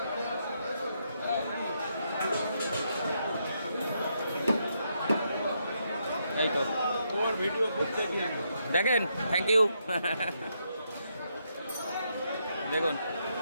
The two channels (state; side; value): inverted; both; correlation -0.78